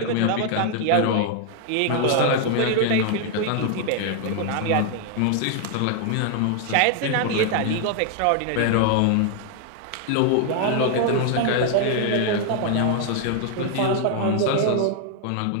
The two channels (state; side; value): different; both; correlation 0.00